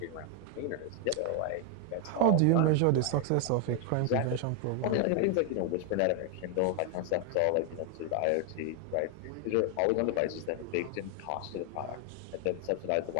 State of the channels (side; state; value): both; different; correlation 0.00